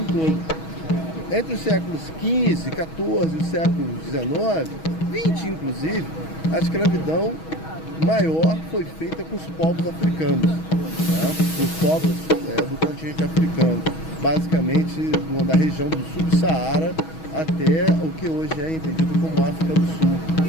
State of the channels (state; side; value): late; right; 6.2 ms